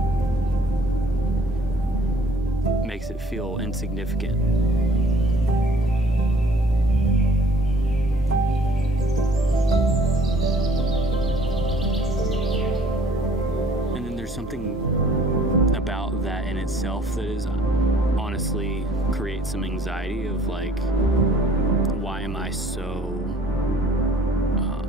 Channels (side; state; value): both; normal; correlation 0.56